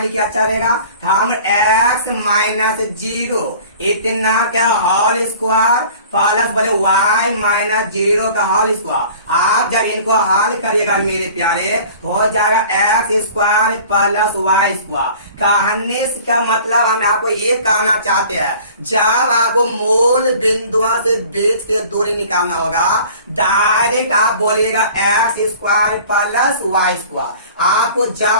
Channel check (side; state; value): both; inverted; correlation -0.46